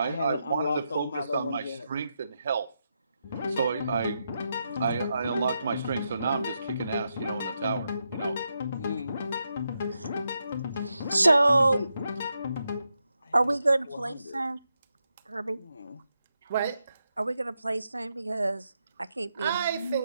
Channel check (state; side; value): inverted; both; correlation -0.85